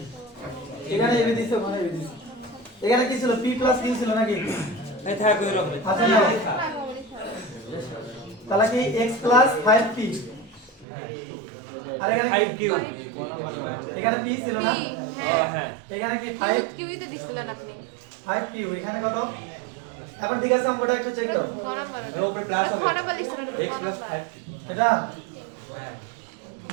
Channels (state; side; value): drops out; left; at 10.9 s